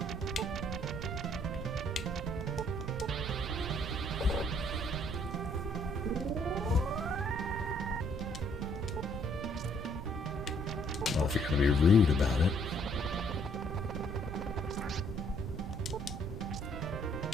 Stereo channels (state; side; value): noise; right; rumble, 7 dB below the sound